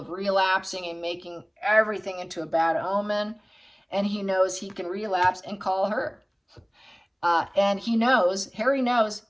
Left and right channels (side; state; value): both; identical; correlation 1.00